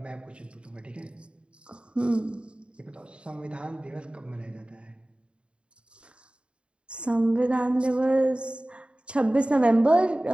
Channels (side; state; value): left; late; 0.056 ms